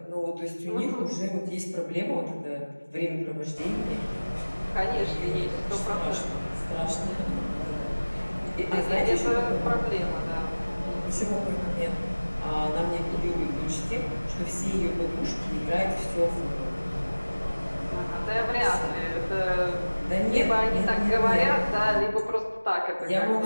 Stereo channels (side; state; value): both; inverted; correlation -1.00